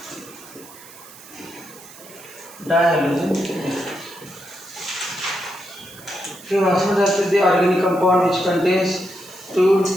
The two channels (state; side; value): noise; right; hiss, 19 dB below the sound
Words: Dihalogen. So, the organic compound which contains 2